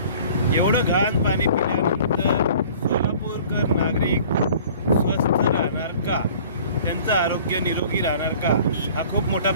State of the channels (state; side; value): inverted; both; correlation -0.49